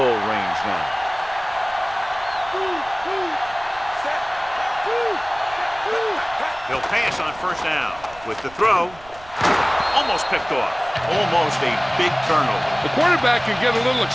range now. He'll pass on first down. With the throw. Almost picked off. Almost a big turnover. The quarterback can get a little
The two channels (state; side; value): noise; right; rumble, 22 dB below the sound